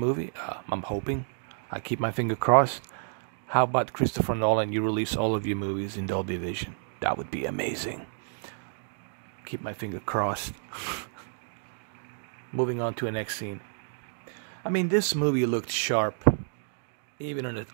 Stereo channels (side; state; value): left; silent; digital silence